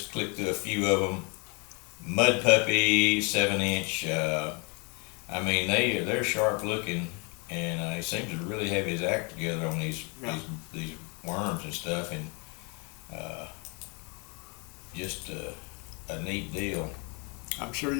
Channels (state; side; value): quieter; right; 32.7 dB